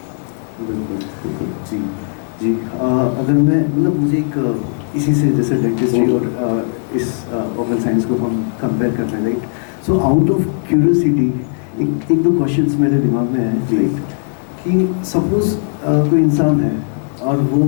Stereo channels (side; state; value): right; silent; 67 dB below the other